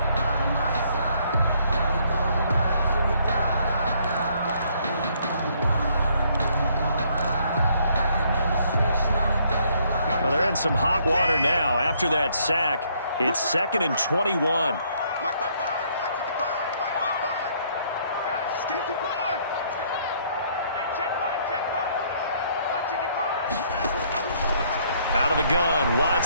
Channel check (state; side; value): inverted; both; correlation -0.67